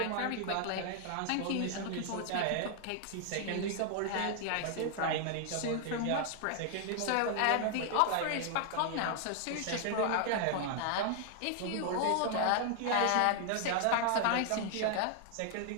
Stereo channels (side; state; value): both; different; correlation 0.00